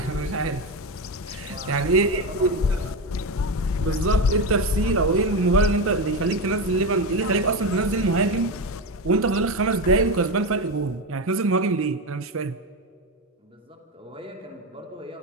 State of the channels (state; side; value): normal; both; correlation 0.16